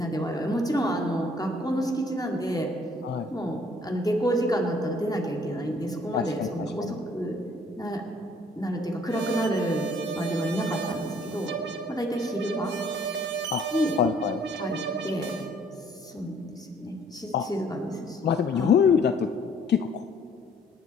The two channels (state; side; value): normal; both; correlation 0.60